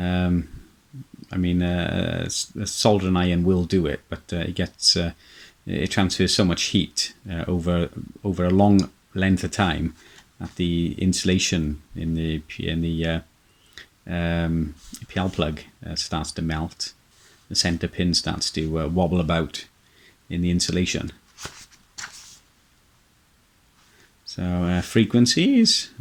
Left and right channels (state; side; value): identical; both; correlation 1.00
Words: I mean, a soldering iron will do it, but it transfers so much heat over a long length of time that the insulation in the PL plug starts to melt. The center pin starts to wobble about in the insulation. So frequencies,